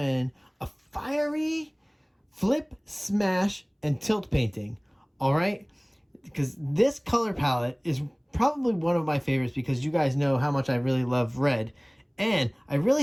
a fiery flip, smash, and tilt painting. Alright? Because this color palette is probably one of my favorites because you guys know how much I really love red. And I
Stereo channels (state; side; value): identical; both; correlation 1.00